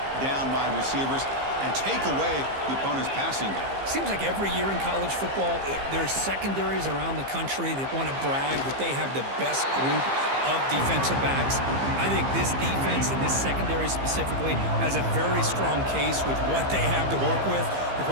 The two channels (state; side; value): late; left; 15 ms